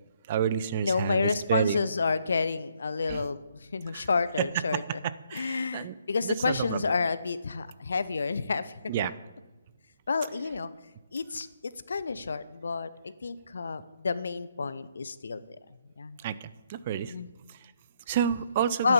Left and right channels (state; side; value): inverted; both; correlation -0.72